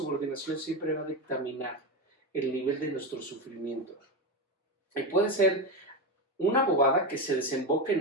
siempre va a dictaminar el nivel de nuestro sufrimiento. Y puede ser una bobada que se desemboque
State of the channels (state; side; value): normal; both; correlation 0.15